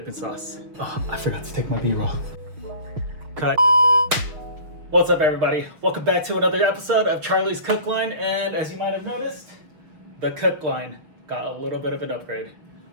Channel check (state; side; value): late; left; 6.6 ms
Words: sauce. Oh, I forgot to take my B-roll. Cut. What's up, everybody? Welcome back to another episode of Charlie's Cook Line. And as you might have noticed, the cook line got a little bit of an upgrade.